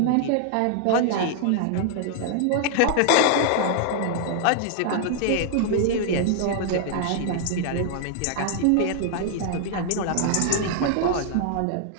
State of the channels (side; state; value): both; different; correlation -0.01